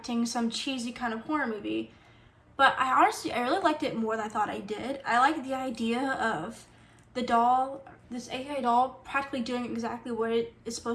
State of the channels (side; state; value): both; identical; correlation 1.00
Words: some cheesy kind of horror movie, but I really liked it more than I thought I did. I liked the idea of the doll, this AI doll, practically doing exactly what it is